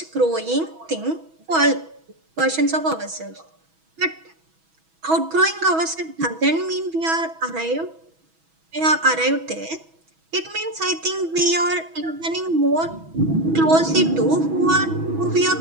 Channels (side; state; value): left; late; 6.2 ms